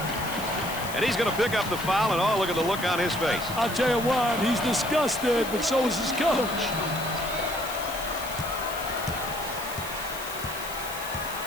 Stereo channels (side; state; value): left; noise; hiss, 11 dB below the sound